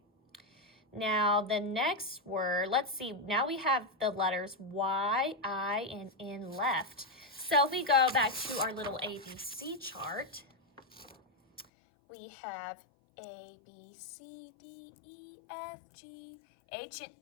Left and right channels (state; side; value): drops out; right; at 11.7 s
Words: Now the next word, let's see, now we have the letters Y, I, and N left. So if we go back to our little ABC chart, we have A, B, C, D, E, F, G, H, and